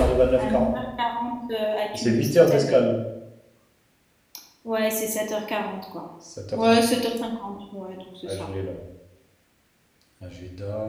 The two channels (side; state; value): both; identical; correlation 1.00